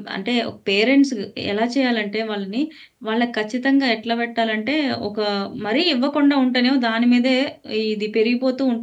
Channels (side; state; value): both; identical; correlation 1.00